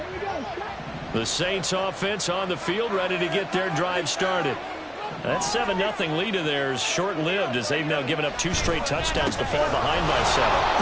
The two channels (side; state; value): both; identical; correlation 1.00